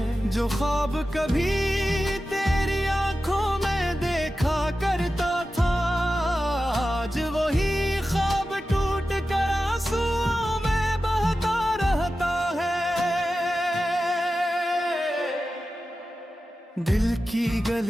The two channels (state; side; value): normal; both; correlation 0.93